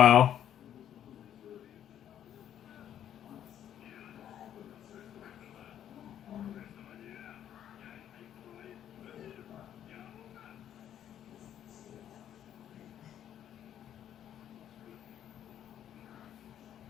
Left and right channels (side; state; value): right; quieter; 10.4 dB